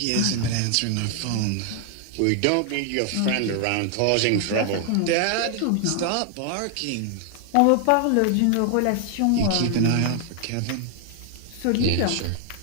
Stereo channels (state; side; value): different; both; correlation 0.00